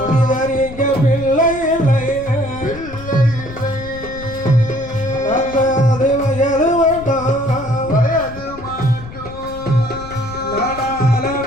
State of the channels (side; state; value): left; noise; rumble, 14 dB below the sound